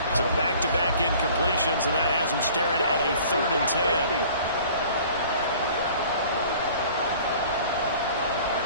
So back-to-back incompletions, and that has him staring at a 3rd and 10.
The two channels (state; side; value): inverted; both; correlation -0.49